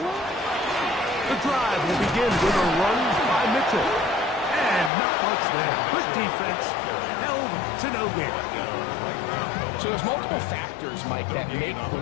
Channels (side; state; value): right; drops out; at 4.9 s